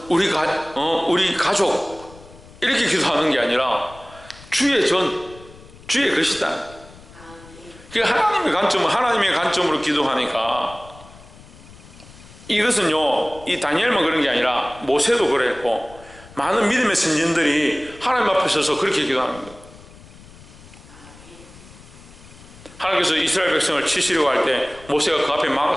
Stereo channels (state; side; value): noise; left; rumble, 21 dB below the sound